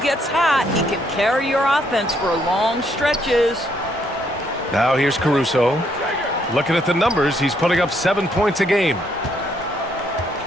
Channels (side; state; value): both; normal; correlation 0.71